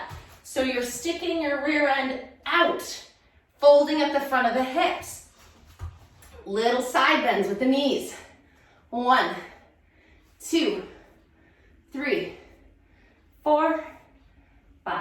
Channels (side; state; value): both; identical; correlation 1.00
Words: So you're sticking your rear end out, folding at the front of the hips. Little side bends with the knees. 1, 2, 3, 4,